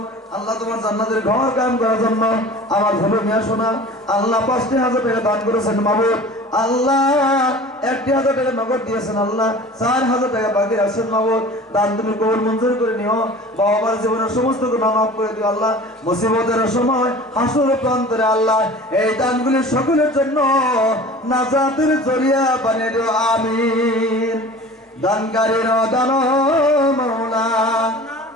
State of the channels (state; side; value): normal; both; correlation 0.41